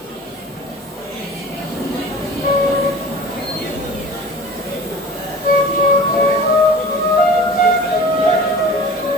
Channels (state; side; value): normal; both; correlation 0.40